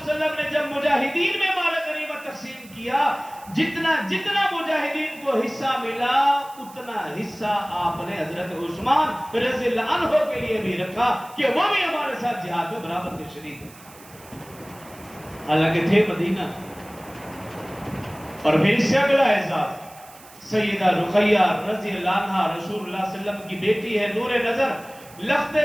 علیہ وسلم نے جب مجاہدین میں مال غنیمت تقسیم کیا، جتنا جتنا مجاہدین کو حصہ ملا اتنا حصہ آپ نے حضرت عثمان رضی اللہ عنہ کے لیے بھی رکھا کہ وہ بھی ہمارے ساتھ جہاد میں برابر کے شریک ہیں. حالانکہ تھے مدینہ. اور پھر اس سے اگلا اعزاز، سیدہ رقیہ رضی اللہ عنہ رسول اللہ صلی اللہ علیہ وسلم کی بیٹی ہے، نور نظر لخت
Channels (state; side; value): noise; right; hiss, 22 dB below the sound